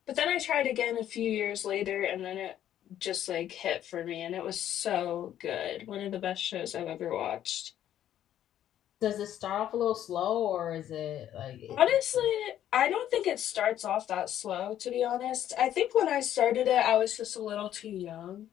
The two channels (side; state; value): right; quieter; 11.3 dB